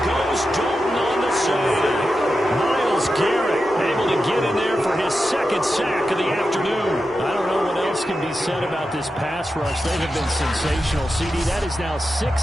goes Dalton on the save. Myles Garrett able to get in there for his 2nd sack of the afternoon. I don't know what else can be said about this pass rush. They have been sensational. CD, that is now 6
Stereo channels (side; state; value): both; normal; correlation 0.90